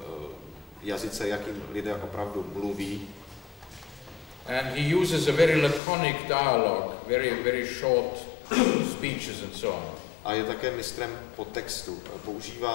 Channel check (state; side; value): drops out; right; at 5.8 s